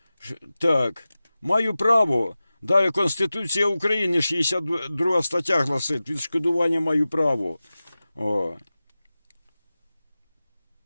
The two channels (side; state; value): both; inverted; correlation -0.96